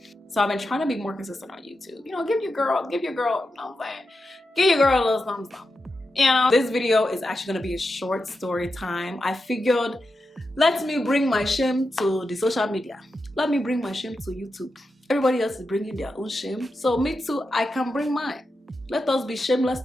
So I've been trying to be more consistent on YouTube. You know, give your girl, you know what I'm saying? Give your girl a little thumbs up. You know, this video is actually gonna be a short story time. I figured, let me bring my shame to the social media. Let me bring my shame to YouTube. Everybody else is bringing their own shame. So me too, I can bring mine. Let us be shameless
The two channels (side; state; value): both; normal; correlation 0.89